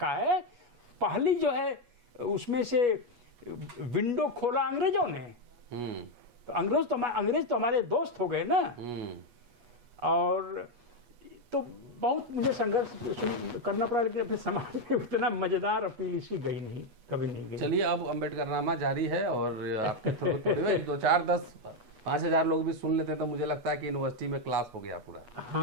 है। पहली जो है उसमें से विंडो खोला अंग्रेजों ने। तो अंग्रेज तो हमारे दोस्त हो गए ना। और तो बहुत मुझे संघर्ष करना पड़ा, लेकिन अपने समाज में उतना मजेदार अपील इसकी गई नहीं, कभी नहीं गई। चलिए अब अम्बेडकरनामा जारी है और आपके 2, 4, 10, 5,000 लोग भी सुन लेते हैं तो मुझे लगता है कि यूनिवर्सिटी में क्लास हो गया पूरा।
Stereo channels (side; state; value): left; late; 8.3 ms